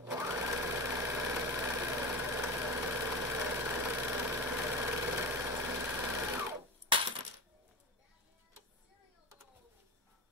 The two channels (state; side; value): normal; both; correlation 0.24